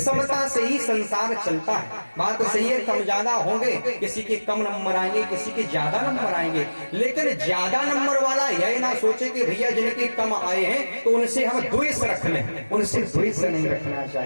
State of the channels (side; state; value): both; inverted; correlation -1.00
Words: से ही संसार चलता है, बात तो सही है। कम ज्यादा होंगे, किसी के कम नंबर आएंगे, किसी के ज्यादा नंबर आएंगे, लेकिन ज्यादा नंबर वाला यह ना सोचे कि भैया जिनके कम आए हैं तो उनसे हम द्वेष रख लें। उनसे द्वेष नहीं रखना